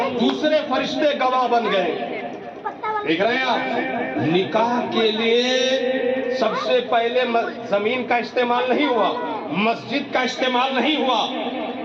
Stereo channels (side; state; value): both; identical; correlation 1.00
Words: دوسرے فرشتے گواہ بن گئے. دیکھ رہے ہیں آپ، نکاح کے لیے سب سے پہلے زمین کا استعمال نہیں ہوا، مسجد کا استعمال نہیں ہوا.